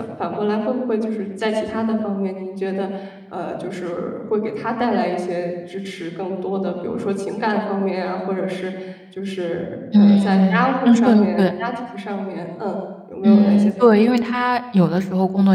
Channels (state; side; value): identical; both; correlation 1.00